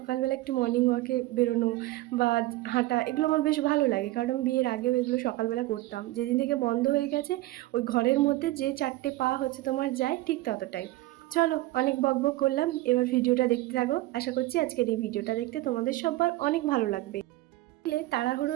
একটু মর্নিং ওয়াকে বেরোনো বা হাঁটা এগুলো আমার বেশ ভালো লাগে, কারণ আমি বিয়ের আগেও এগুলো সকালবেলা করতাম। যেদিন থেকে বন্ধ হয়ে গেছে, ওই ঘরের মধ্যে যে 4টে পা হচ্ছে তোমার যায়, ঠিক ততটাই। চলো, অনেক বকবক করলাম, এবার ভিডিওটা দেখতে থাকো। আশা করছি আজকের এই ভিডিওটা দেখতে তোমাদের সবার অনেক ভালো লাগবে।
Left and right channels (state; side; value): quieter; left; 18.1 dB